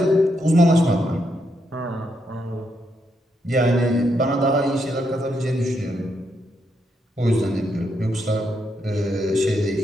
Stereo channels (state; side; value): normal; both; correlation 0.79